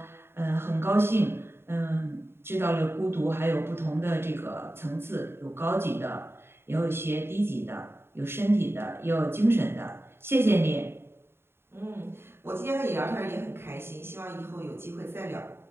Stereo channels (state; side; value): late; left; 0.11 ms